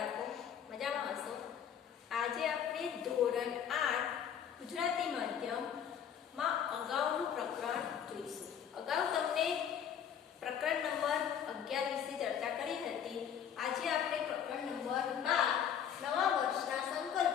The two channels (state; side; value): quieter; right; 8.6 dB